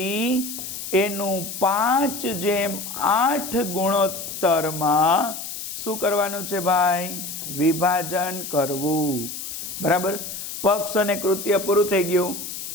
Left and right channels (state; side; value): noise; left; hiss, 8 dB below the sound